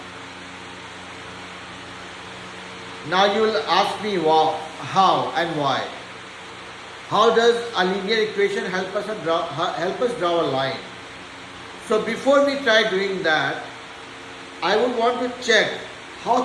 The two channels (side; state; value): both; identical; correlation 1.00